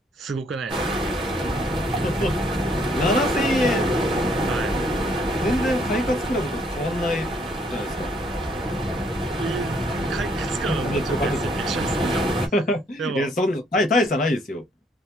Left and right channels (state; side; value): normal; both; correlation 0.67